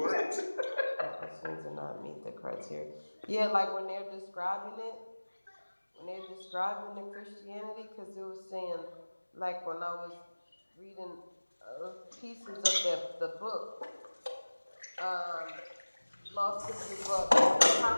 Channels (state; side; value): inverted; both; correlation -1.00